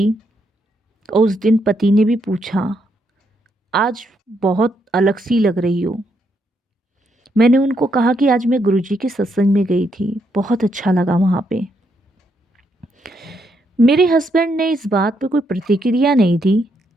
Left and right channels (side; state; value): both; normal; correlation 0.77